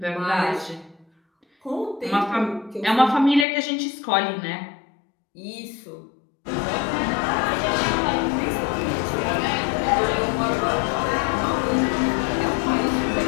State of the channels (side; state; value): right; drops out; at 3.5 s